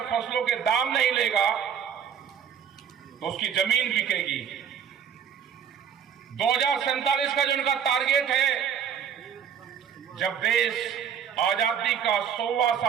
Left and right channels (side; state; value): left; quieter; 8.0 dB